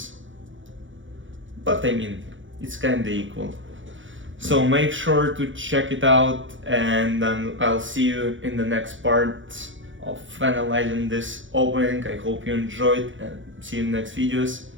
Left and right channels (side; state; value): left; late; 0.56 ms